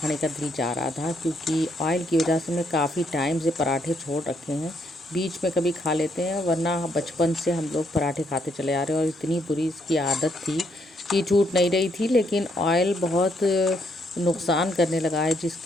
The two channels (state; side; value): normal; both; correlation 0.74